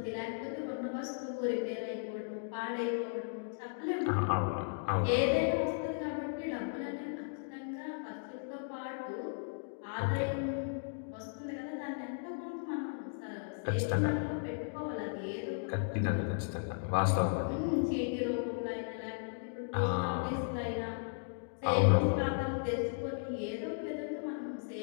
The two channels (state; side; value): silent; right; digital silence